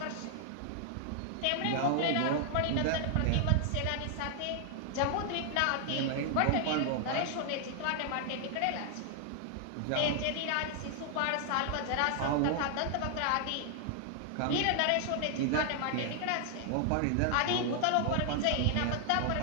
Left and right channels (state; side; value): different; both; correlation 0.00